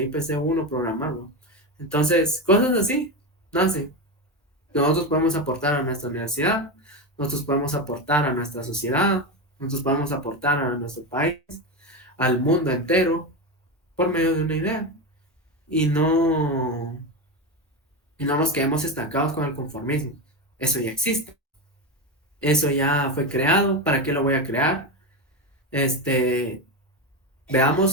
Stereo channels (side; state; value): both; normal; correlation 0.16